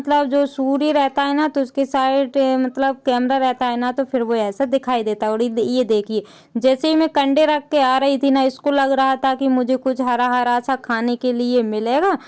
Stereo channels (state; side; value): identical; both; correlation 1.00